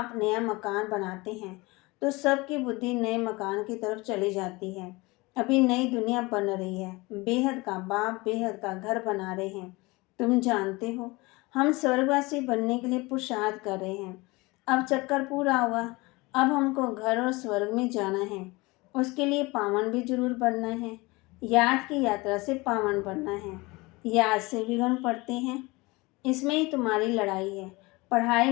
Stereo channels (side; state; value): right; quieter; 23.5 dB